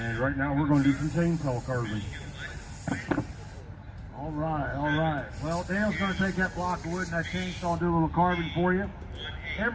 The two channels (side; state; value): both; identical; correlation 1.00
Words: right now we're going to do some chainsaw carving. All right. Well, Dale's going to take that block of wood and that chainsaw and do a little carving for you.